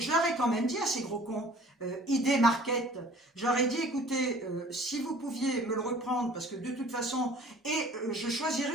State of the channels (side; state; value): both; normal; correlation 0.50